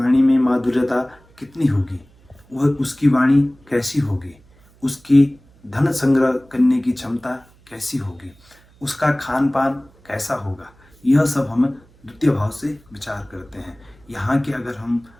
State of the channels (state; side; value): noise; right; hum, 29 dB below the sound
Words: में माधुर्यता कितनी होगी, वह उसकी वाणी कैसी होगी, उसकी धन संग्रह करने की क्षमता कैसी होगी, उसका खान पान कैसा होगा। यह सब हम द्वितीय भाव से विचार करते हैं। यहाँ के अगर हम